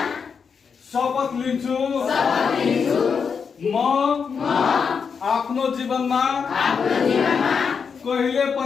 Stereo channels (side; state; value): right; quieter; 6.1 dB